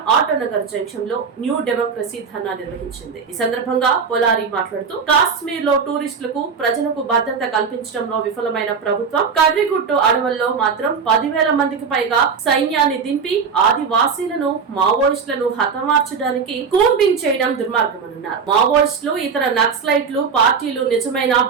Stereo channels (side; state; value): left; quieter; 5.8 dB